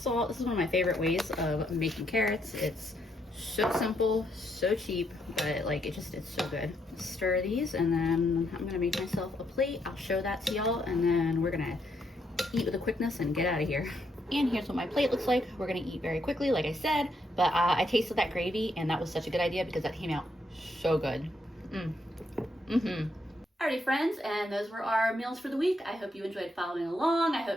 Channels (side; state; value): both; normal; correlation 0.76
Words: This is one of my favorite ways of making carrots. It's so simple, so cheap, but like it's so good. Stir these, and then I'm gonna make myself a plate. I'll show that to y'all, and then we're gonna eat with a quickness and get out of here. And here's what my plate looks like. We're gonna eat very quickly, like I said, but I tasted that gravy, and that was such a good idea because that came out so good. Alrighty friends, and those were our meals for the week. I hope you enjoyed following along. I